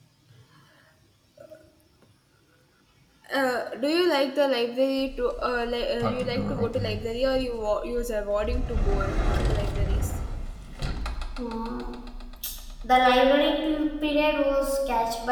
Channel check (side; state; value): both; identical; correlation 1.00